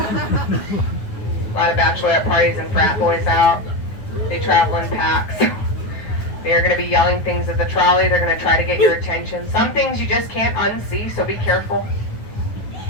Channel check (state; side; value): late; right; 9.6 ms